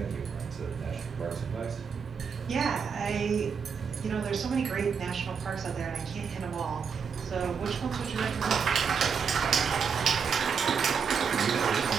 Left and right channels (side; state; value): left; quieter; 6.3 dB